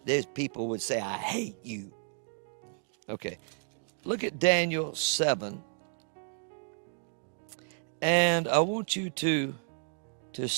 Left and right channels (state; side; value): silent; left; digital silence